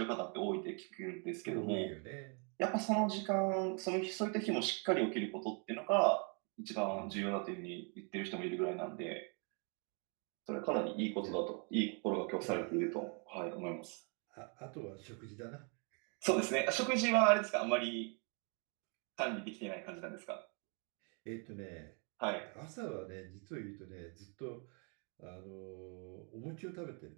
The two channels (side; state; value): left; quieter; 37.4 dB